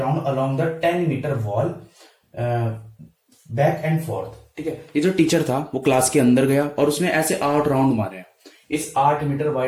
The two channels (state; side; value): identical; both; correlation 1.00